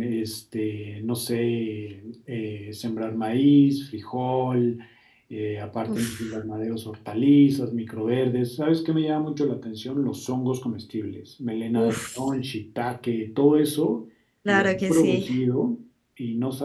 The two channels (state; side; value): identical; both; correlation 1.00